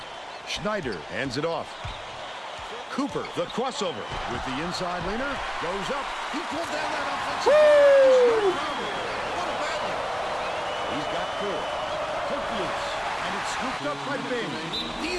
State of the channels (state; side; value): identical; both; correlation 1.00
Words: Schneider hands it off. Cooper, the crossover with the inside leaner, goes up. He pulled down that offensive. Woo! What a battle. He's got 4. Hook loose, and it's scooped up by Bing. The